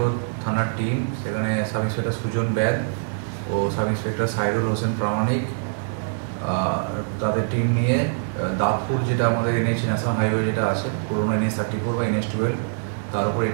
থানার টিম সেখানে সাব ইন্সপেক্টর সুজন ব্যাদ ও সাব ইন্সপেক্টর সাইরুল হোসেন প্রামাণিক তাদের টিম নিয়ে দাঁতপুর যেটা আমাদের NH ন্যাশনাল হাইওয়ে যেটা আছে পুরোনো NH-34 বা NH-12 তার উপর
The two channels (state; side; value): silent; left; 59 dB below the other